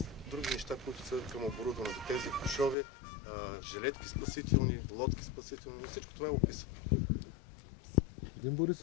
други неща, които са към оборудването. Тези кошове, жилетки спасителни, лодки спасителни, всичко това е описано. Господин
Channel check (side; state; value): right; drops out; at 2.8 s